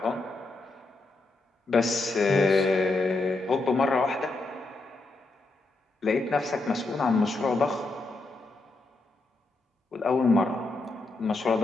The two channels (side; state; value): right; quieter; 3.2 dB